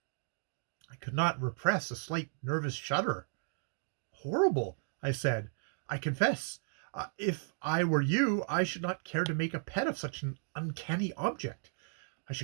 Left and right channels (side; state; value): left; silent; digital silence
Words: I could not repress a slight nervous shudder. "Horrible," I said. "I confess, if I were you, I should not care to make a pet of such an uncanny object. I